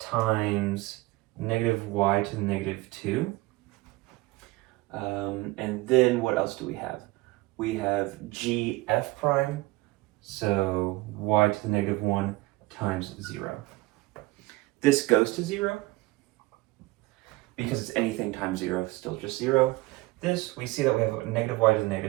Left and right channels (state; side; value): quieter; left; 21.0 dB